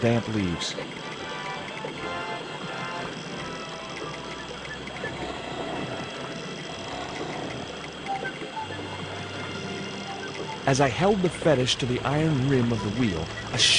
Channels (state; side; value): identical; both; correlation 1.00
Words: leaves. As I held the fetish to the iron rim of the wheel, a